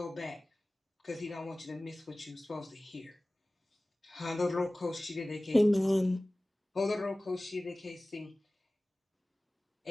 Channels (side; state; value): both; normal; correlation 0.98